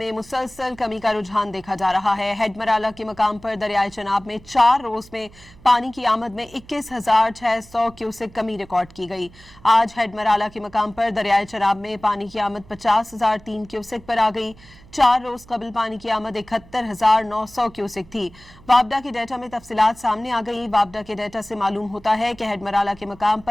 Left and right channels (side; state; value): right; noise; hum, 23 dB below the sound